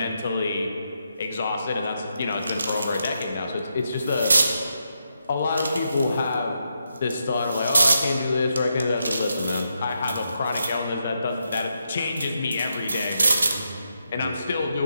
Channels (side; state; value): both; inverted; correlation -0.83